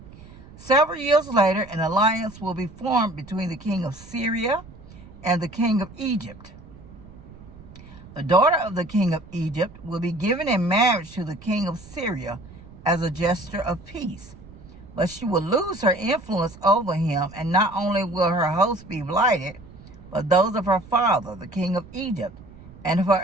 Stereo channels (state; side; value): noise; right; rumble, 19 dB below the sound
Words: Several years later, an alliance will be formed between the king of Syria and the king of Egypt. The daughter of the king of Egypt will be given in marriage to the king of Syria as a gesture of peace, but she will lose her influence over him, and not only will her host be blighted, but those of her father, the king of Egypt, and of her